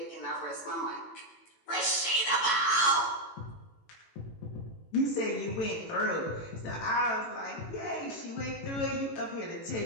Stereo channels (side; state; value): right; late; 18 ms